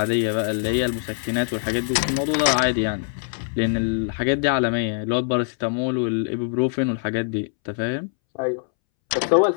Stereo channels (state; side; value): silent; right; 63 dB below the other